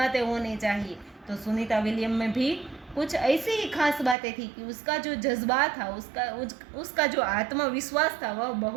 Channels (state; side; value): drops out; left; at 4.2 s